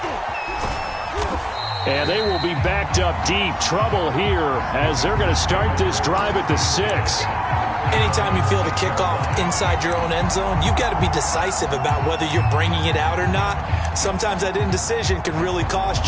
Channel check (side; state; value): both; identical; correlation 1.00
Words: And they will be backed up deep. Trouble here as they're going to start this drive at the 6. Anytime you feel the kickoff inside your own end zone, you've got to be decisive about whether you're bringing it out or not. Sometimes that indecision can really